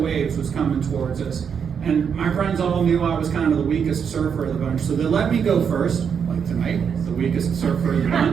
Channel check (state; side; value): quieter; left; 7.1 dB